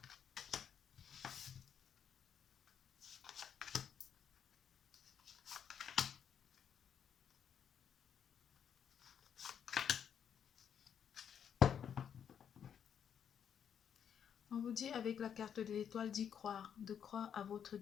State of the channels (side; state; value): right; quieter; 8.3 dB